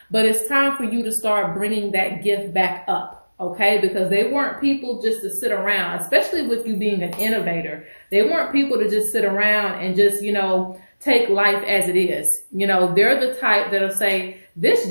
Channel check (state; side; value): inverted; both; correlation -1.00